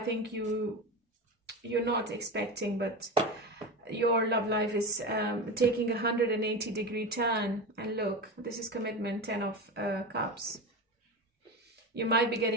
you're not expecting, but your love life is taking a 180-degree turn. And look, this is commitment, 10 of Cups. You might be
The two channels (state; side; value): normal; both; correlation 0.23